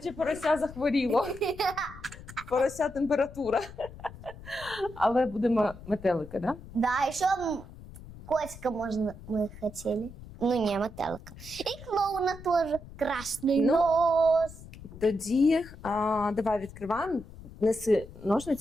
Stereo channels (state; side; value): noise; left; rumble, 16 dB below the sound